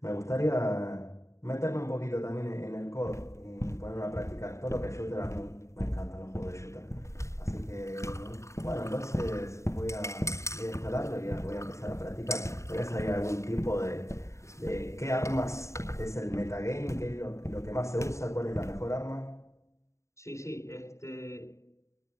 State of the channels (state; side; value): late; right; 0.14 ms